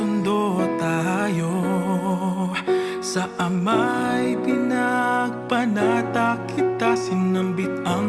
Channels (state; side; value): identical; both; correlation 1.00